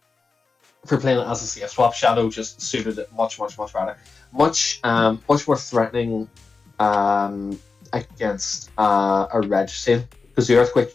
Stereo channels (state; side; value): quieter; right; 4.4 dB